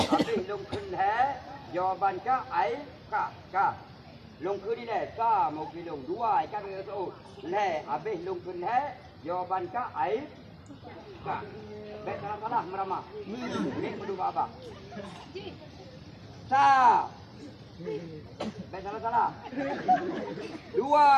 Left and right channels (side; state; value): both; identical; correlation 1.00